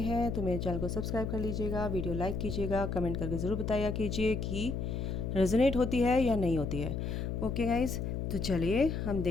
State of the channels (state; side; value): noise; left; hum, 3 dB below the sound